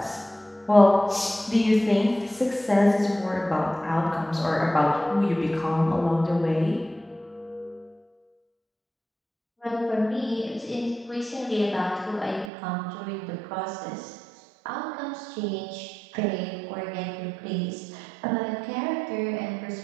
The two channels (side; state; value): left; drops out; at 12.5 s